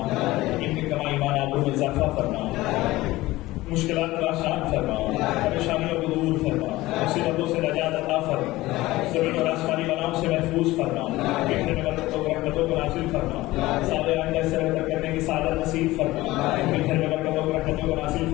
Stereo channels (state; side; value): quieter; right; 18.3 dB